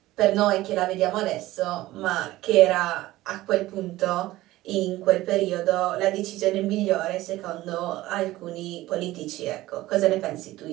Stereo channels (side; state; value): left; quieter; 16.9 dB